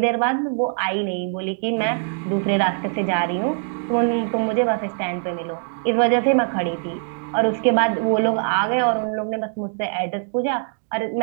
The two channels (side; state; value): left; silent; 64 dB below the other